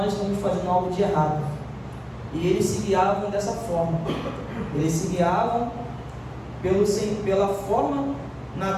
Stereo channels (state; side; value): identical; both; correlation 1.00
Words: estamos fazendo algo de errado, e eles se guiavam dessa forma. Eles se guiavam pela forma